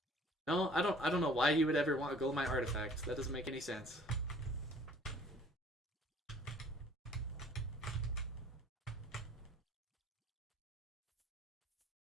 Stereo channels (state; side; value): normal; both; correlation 0.54